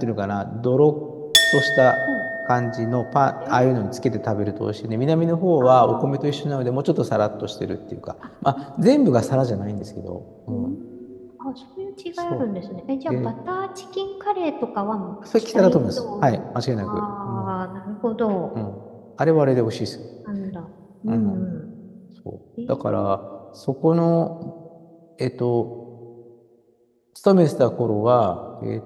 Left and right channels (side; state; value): both; identical; correlation 1.00